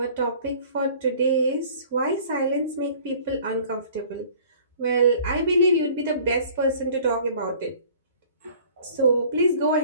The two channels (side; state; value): both; inverted; correlation -0.50